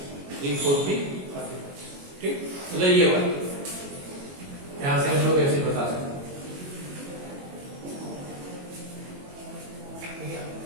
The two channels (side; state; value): left; late; 22 ms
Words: 3 4P ठीक। मतलब ये वाला यहां से हम लोग ऐसे बता सकते हैं